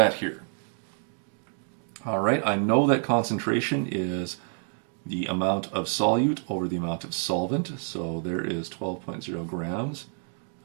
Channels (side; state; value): left; silent; 59 dB below the other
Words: here. All right, I know that concentration is the amount of solute over the amount of solvent. So there is 12.0 grams